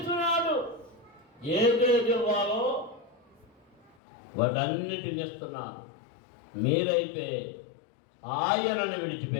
ఏదేది ఇవ్వాలో వాటన్నిటిని ఇస్తున్నాడు. మీరైతే ఆయనను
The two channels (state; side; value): drops out; right; at 4.0 s